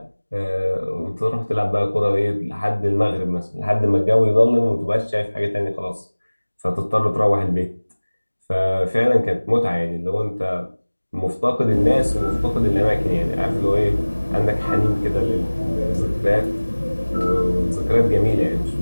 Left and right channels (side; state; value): both; inverted; correlation -1.00